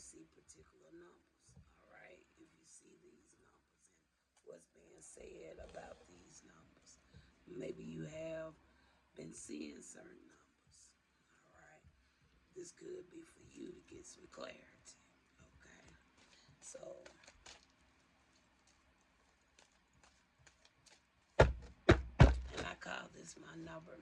particular numbers. All right, if you see these numbers and what's being said about these numbers, maybe you have been seeing certain numbers. All right. This could be for you to get some clarity. Okay. So, and I call this my number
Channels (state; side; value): identical; both; correlation 1.00